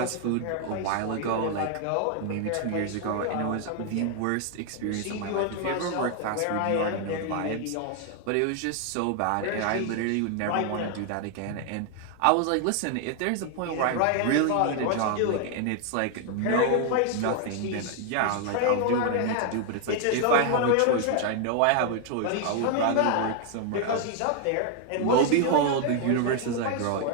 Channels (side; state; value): both; different; correlation 0.00